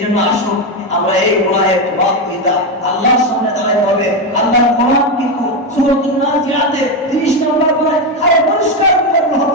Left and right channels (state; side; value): normal; both; correlation 0.10